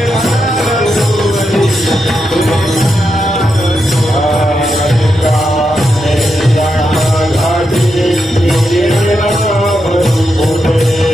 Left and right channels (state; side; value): normal; both; correlation 0.85